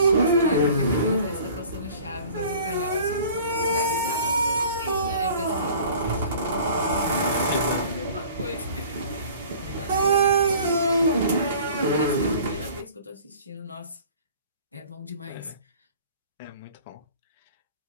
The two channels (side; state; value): both; inverted; correlation -0.47